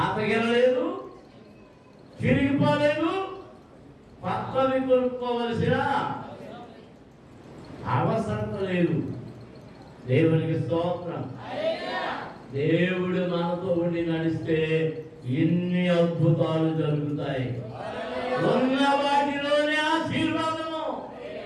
చిరిగిపోలేదు, కొత్తవి కొనుక్కోవలసిన అవసరం లేదు. దేవునికి స్తోత్రం. దేవుడు మనతో ఉండి నడిస్తే ఎన్ని అద్భుతాలు జరుగుతాయి. ఉన్న వాటిలోనే ఆశీర్వాదము,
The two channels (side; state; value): both; identical; correlation 1.00